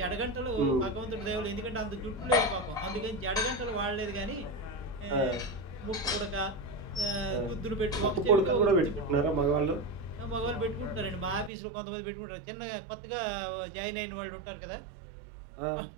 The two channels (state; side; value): drops out; left; at 11.5 s